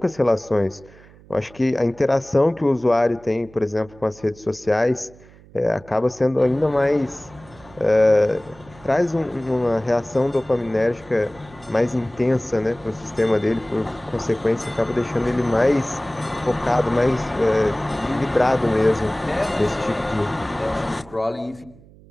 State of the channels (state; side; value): noise; right; hum, 24 dB below the sound